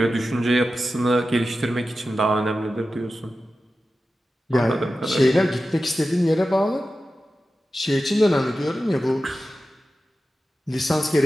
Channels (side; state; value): both; normal; correlation 0.93